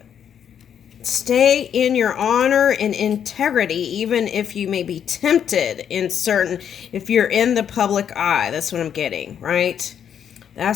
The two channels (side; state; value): right; quieter; 8.7 dB